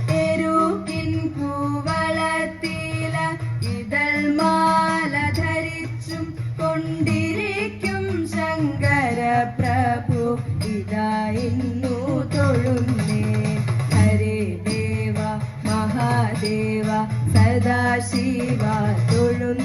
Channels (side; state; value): both; identical; correlation 1.00